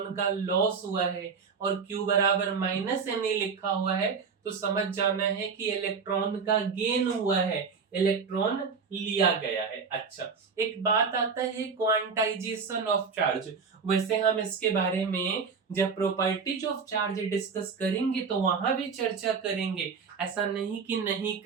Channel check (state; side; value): quieter; left; 5.5 dB